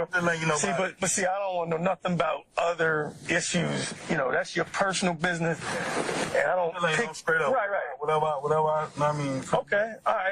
See, but see, I don't want to know nothing about other issues. That's your personal business, and I don't pick. Straight up. Right. Whatever. I mean. Okay. All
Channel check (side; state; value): both; identical; correlation 1.00